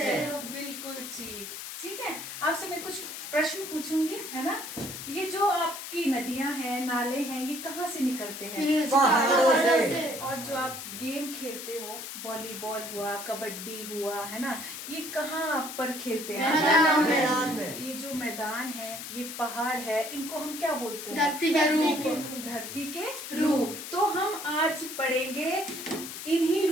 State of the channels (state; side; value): noise; left; hiss, 9 dB below the sound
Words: बिल्कुल ठीक। ठीक है, आपसे मैं कुछ प्रश्न पूछूंगी, है ना? ये जो आपकी नदियां हैं, नाले हैं, ये कहाँ से निकलते हैं? पहाड़ों से। और जो आप गेम खेलते हो, वॉलीबॉल हुआ, कबड्डी हुआ, है ना, ये कहाँ पर खेलते हैं? मैदान में। ये जो मैदान है, ये पहाड़ है, इनको हम क्या बोलते हैं? धरती के रूप। धरती के रूप। तो हम आज पढ़ेंगे इन्हीं